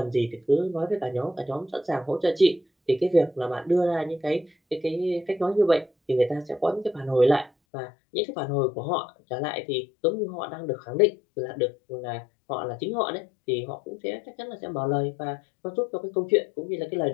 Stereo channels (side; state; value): right; drops out; at 7.5 s